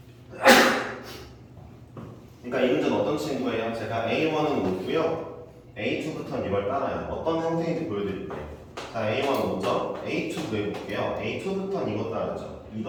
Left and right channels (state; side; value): identical; both; correlation 1.00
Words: 그러니까 이 문제는 어떤 친구예요? 제가 A1은 5고요. A2부터는 이걸 따라요. 어떤 형태인지 보여드릴게요. 자, A1 5죠? A2 구해볼게요. A2부터는 이거 따르죠. 2